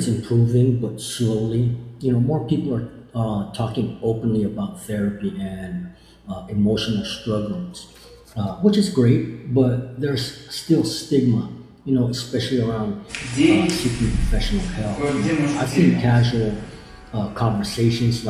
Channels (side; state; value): both; identical; correlation 1.00